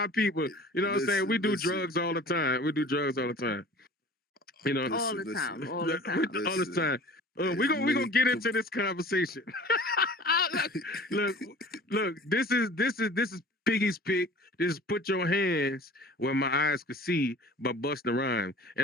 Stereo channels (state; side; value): normal; both; correlation 0.44